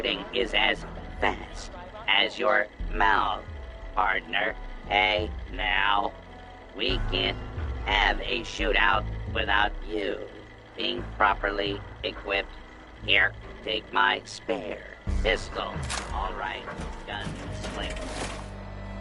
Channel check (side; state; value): both; identical; correlation 1.00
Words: is as fast as your mouth, partner. Hey, now, we can't have a shootout without you being properly equipped. Here, take my spare pistol. All right, gun slick.